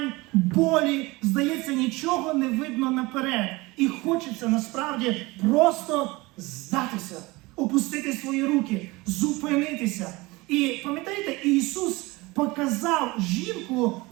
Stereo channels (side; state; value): left; quieter; 22.5 dB